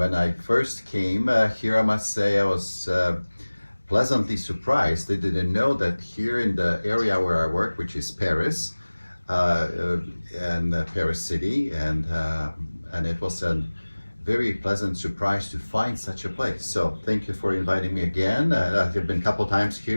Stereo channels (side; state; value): both; inverted; correlation -1.00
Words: I first came here, I must say I was pleasantly surprised. I didn't know that here in the area where I work, which is Paris, and Paris City, and it was a very pleasant surprise to find such a place. So thank you for inviting me again. I've been a couple times